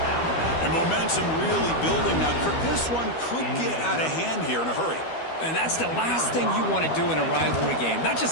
And momentum really building. Now, Kirk, this one could get out of hand here in a hurry. And that's the last thing you want to do in a rivalry game. Not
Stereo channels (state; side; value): late; right; 12 ms